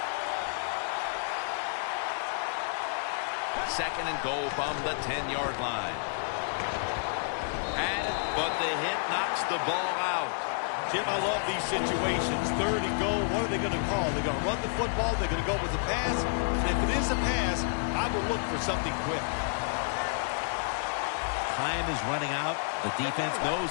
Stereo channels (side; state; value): right; silent; digital silence